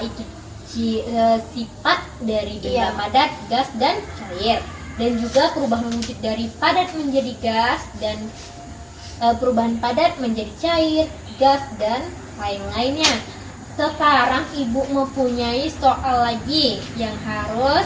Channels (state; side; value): identical; both; correlation 1.00